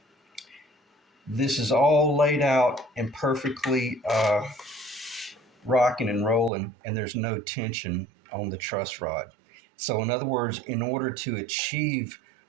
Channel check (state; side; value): drops out; left; at 6.5 s